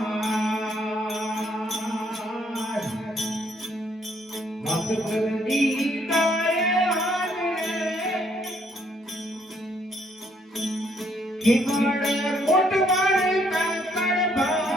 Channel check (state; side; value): normal; both; correlation 0.69